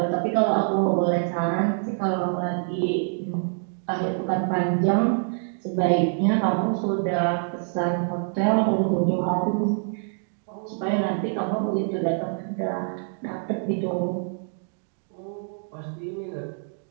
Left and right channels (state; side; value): silent; left; 61 dB below the other